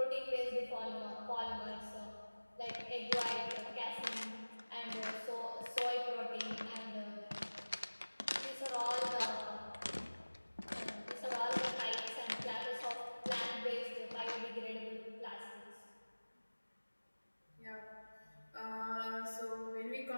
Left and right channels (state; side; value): inverted; both; correlation -1.00